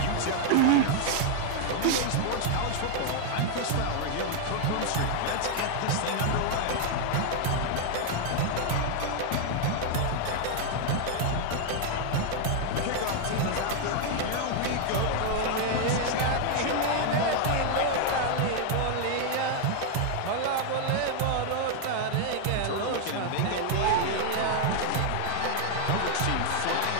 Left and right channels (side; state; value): both; different; correlation 0.00